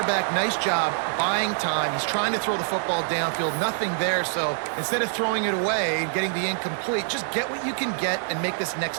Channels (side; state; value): left; silent; 61 dB below the other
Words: nice job buying time. He's trying to throw the football downfield. Nothing there. So instead of throwing it away and getting the incomplete, just get what you can get and make this